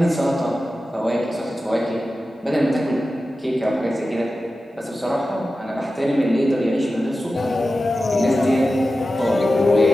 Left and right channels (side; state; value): both; normal; correlation 0.93